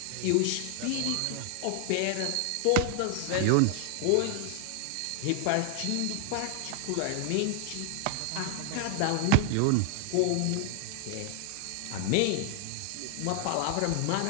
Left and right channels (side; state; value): both; different; correlation 0.00